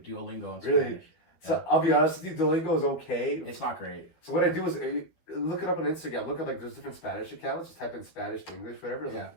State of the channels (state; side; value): late; right; 12 ms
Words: Duolingo in Spanish. Really? So I'll be honest with you, Duolingo is okay. It's not great. So what I do is look it up on Instagram. Look up like there's different Spanish accounts. Just type in Spanish to English, whatever. Yeah.